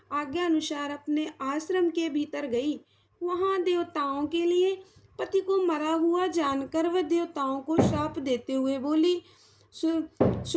आज्ञा अनुसार अपने आश्रम के भीतर गई। वहां देवताओं के लिए पति को मरा हुआ जानकर वह देवताओं को शाप देते हुए बोली।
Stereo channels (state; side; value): identical; both; correlation 1.00